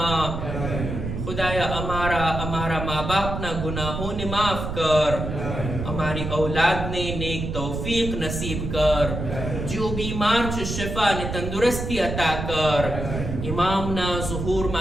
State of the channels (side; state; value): right; noise; rumble, 5 dB below the sound